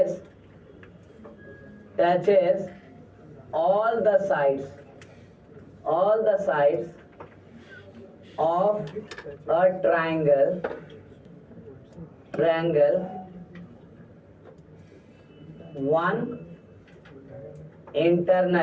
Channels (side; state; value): both; identical; correlation 1.00